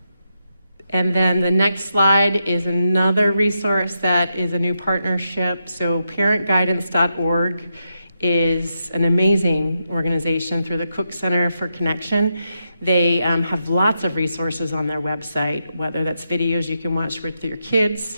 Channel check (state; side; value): inverted; both; correlation -0.83